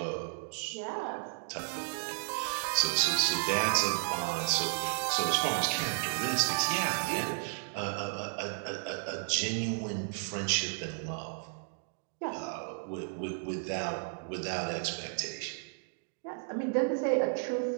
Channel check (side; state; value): left; silent; digital silence